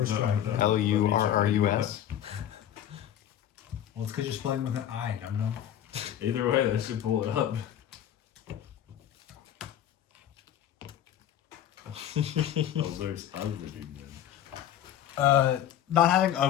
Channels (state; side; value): quieter; right; 10.7 dB